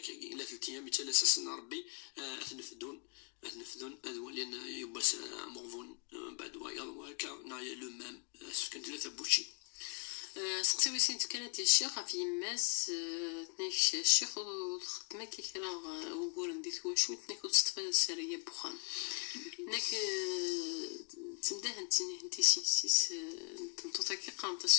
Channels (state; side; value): quieter; right; 38.0 dB